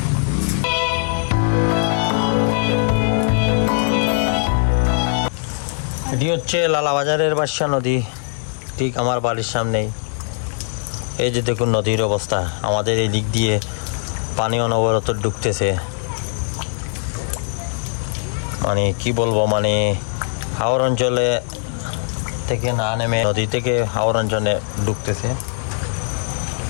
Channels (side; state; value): right; silent; digital silence